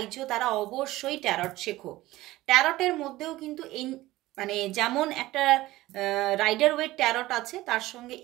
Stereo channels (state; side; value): quieter; left; 17.4 dB